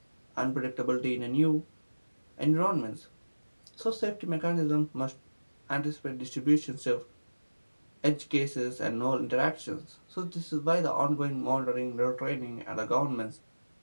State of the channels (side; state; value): both; inverted; correlation -1.00